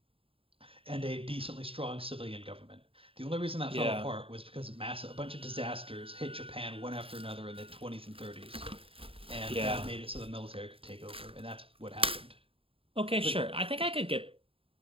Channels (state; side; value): late; left; 0.27 ms